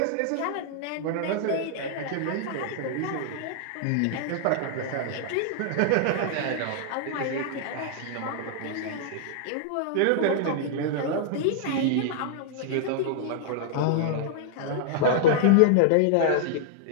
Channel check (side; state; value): both; different; correlation -0.01